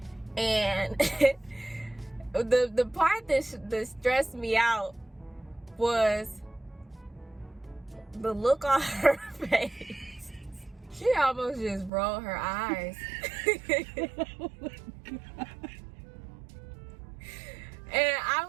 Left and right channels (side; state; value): left; drops out; at 11.9 s